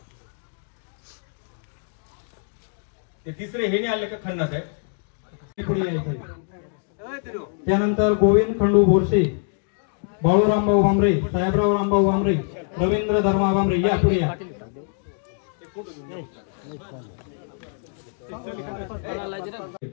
ते तिसरे हे नाही आले का खन्ना साहेब? पुढे यायचं. त्यानंतर गोविंद खंडू बोरसे, बाळूरामभाऊ भांबरे, साहेबराव रामभाऊ भांबरे, रवींद्र धर्मा भांबरे या पुढे या.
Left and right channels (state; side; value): silent; right; 61 dB below the other